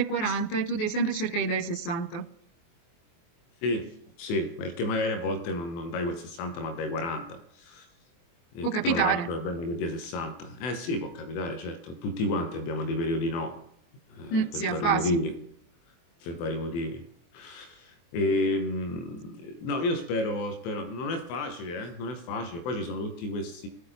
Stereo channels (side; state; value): right; late; 24 ms